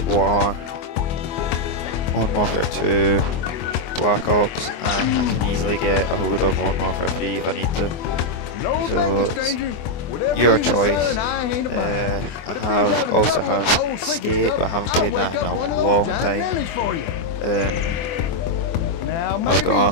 War, Modern Warfare 2, Black Ops, and I can easily get a hold of Modern Warfare 3 if I need to. So it's your choice. I also have Skate, but I haven't played that in a long time. I've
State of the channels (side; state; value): right; late; 24 ms